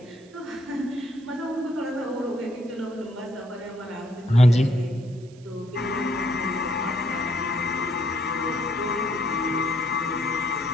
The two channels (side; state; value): right; noise; hiss, 27 dB below the sound